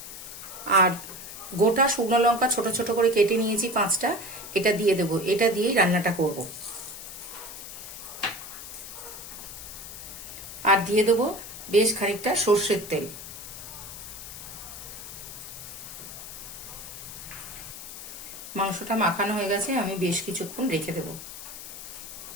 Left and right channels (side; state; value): left; noise; hiss, 11 dB below the sound